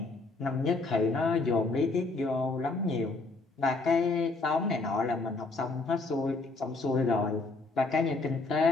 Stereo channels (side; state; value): right; quieter; 3.5 dB